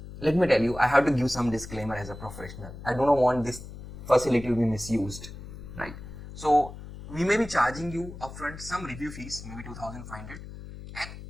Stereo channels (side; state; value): left; noise; hum, 13 dB below the sound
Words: let me tell you, I have to give some disclaimer as a professional. I don't want this facility to be misused, right? So we may be charging you upfront some review fees, maybe 2,500, and